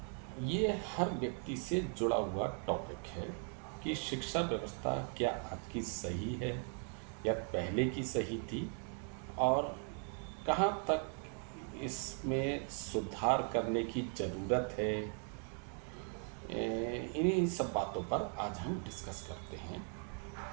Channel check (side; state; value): left; quieter; 38.7 dB